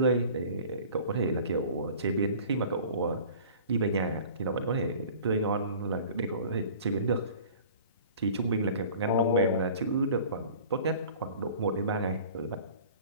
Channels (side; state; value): both; inverted; correlation -0.45